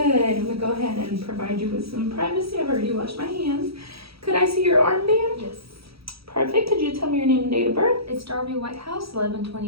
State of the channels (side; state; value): left; late; 0.76 ms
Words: I'm going to go ahead and provide you with some privacy. I've already washed my hands. Could I see your armband? Yes. Perfect. Could you tell me your name and date of birth? It's Darby Whitehouse,